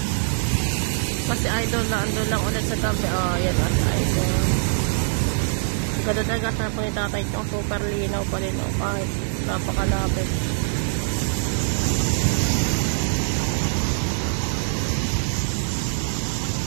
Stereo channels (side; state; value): left; silent; digital silence